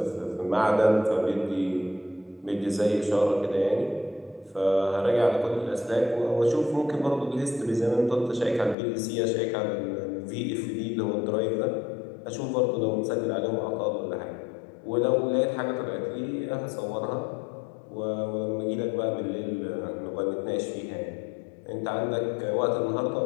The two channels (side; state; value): right; drops out; at 8.8 s